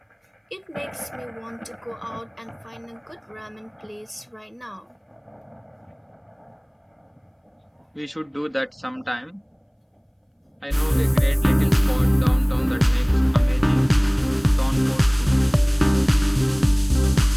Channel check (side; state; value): both; identical; correlation 1.00